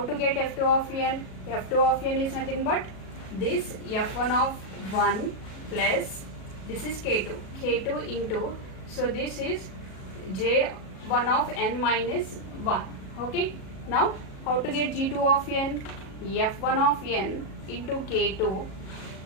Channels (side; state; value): right; late; 37 ms